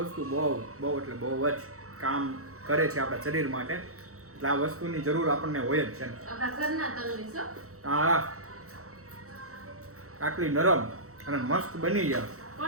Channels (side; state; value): left; late; 0.64 ms